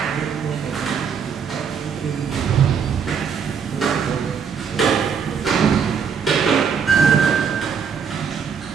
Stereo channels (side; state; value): left; quieter; 6.7 dB